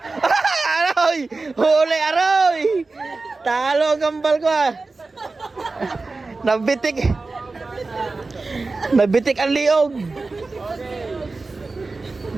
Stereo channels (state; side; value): quieter; left; 3.7 dB